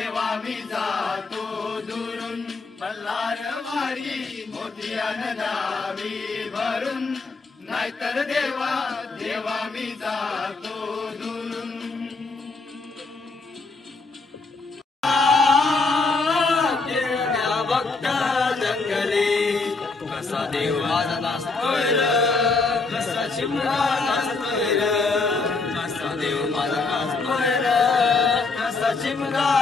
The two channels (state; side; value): quieter; right; 3.9 dB